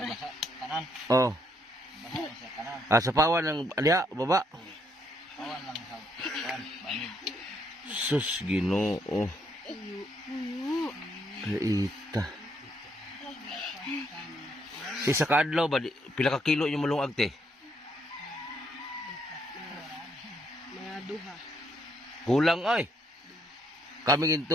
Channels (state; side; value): normal; both; correlation 0.73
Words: basa. Kanan. Oh, Basa ni siya kanan. sapawan ng aliya baba. Kawan lang sa kawan. Banig. Sus Ginoo. Puyo. Puyo. Paita. Isa ka adlaw ba pila ka kilo yung malungag te? Mga duha. Kulang ay. Kami